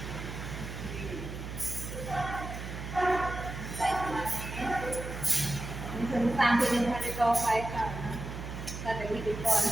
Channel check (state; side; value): noise; right; hum, 8 dB below the sound